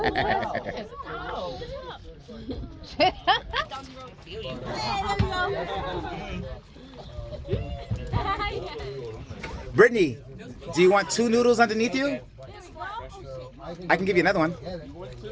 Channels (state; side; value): identical; both; correlation 1.00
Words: Brittany, do you want 2 noodles underneath you? I can give you another one.